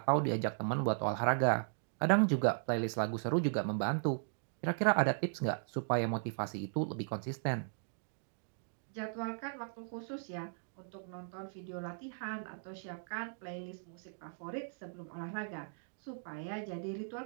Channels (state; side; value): silent; left; digital silence